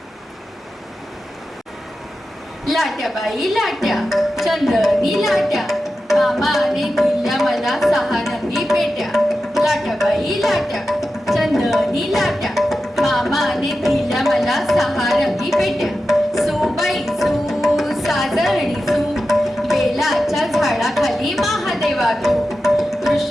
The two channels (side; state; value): both; normal; correlation 0.92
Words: लाट्या बाई लाट्या चंदनी लाट्या मामाने दिल्या मला 6 रंगी पेट्या. लाट्या बाई लाट्या चंदनी लाट्या मामाने दिल्या मला 6 रंगी पेट्या. सुबाई सू साजरणी सू बेलाच्या झाडाखाली महादेवा तू.